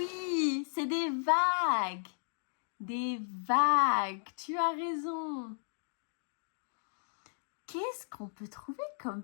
c'est des vagues. Des vagues, tu as raison. Qu'est-ce qu'on peut trouver comme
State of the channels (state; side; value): silent; right; digital silence